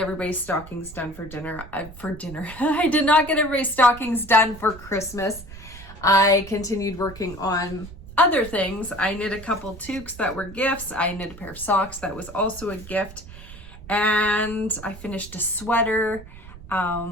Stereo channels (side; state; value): right; noise; rumble, 16 dB below the sound